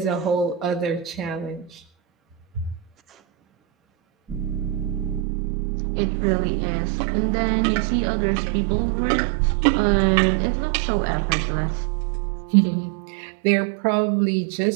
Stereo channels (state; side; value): drops out; left; at 5.2 s